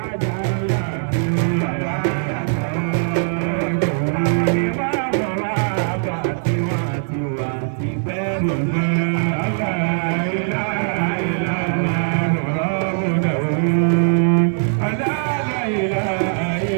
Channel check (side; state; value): left; silent; 66 dB below the other